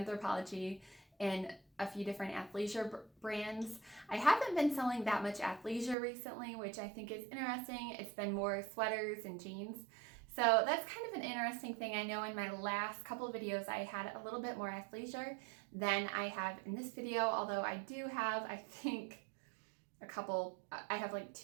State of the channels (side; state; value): left; drops out; at 6.0 s